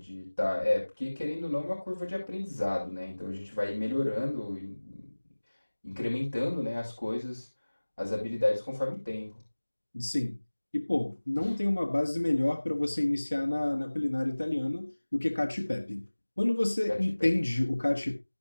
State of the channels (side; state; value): both; inverted; correlation -1.00